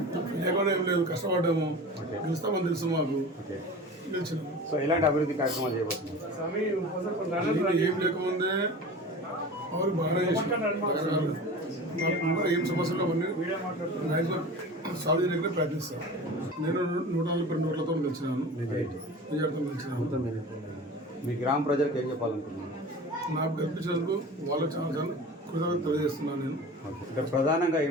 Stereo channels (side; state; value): both; normal; correlation 0.35